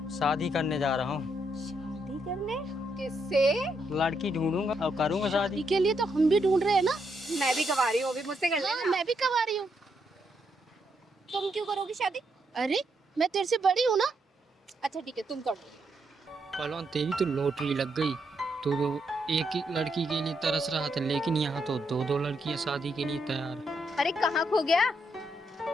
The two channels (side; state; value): both; normal; correlation 0.78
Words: शादी करने जा रहा हूँ। शादी करने? किससे? लड़की ढूंढूंगा और करूंगा शादी। के लिए तो हम भी ढूंढ रहे हैं ना। मैं भी कवा रही हूँ, अभी मुझसे कर लेना। मैं भी कमा रही हूँ। तुम क्यों करोगी शादी? अरे मैं तेरे से बड़ी हूँ ना। अच्छा ठीक है, तुम कर दो। पहलवान तेरी तो लॉटरी लग गई, तो एक ही लड़की के लिए तरस रहा था, लेकिन यहाँ तो 2-2 लड़कियाँ शादी के लिए तैयार है। अरे कहाँ खो गया?